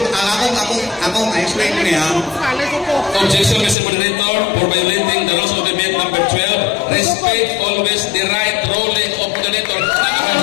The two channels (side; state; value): right; drops out; at 3.8 s